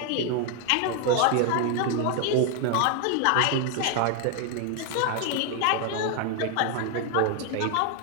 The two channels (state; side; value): different; both; correlation 0.00